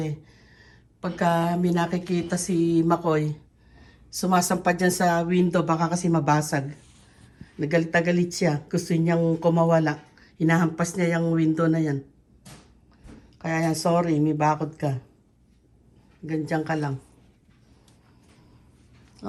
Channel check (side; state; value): both; identical; correlation 1.00